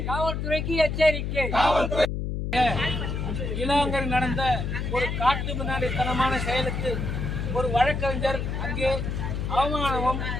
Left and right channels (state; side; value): noise; left; hum, 2 dB below the sound